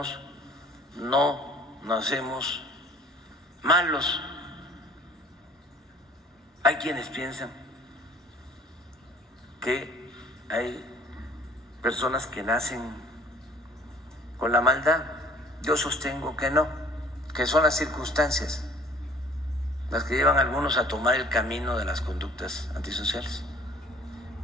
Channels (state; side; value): normal; both; correlation 0.52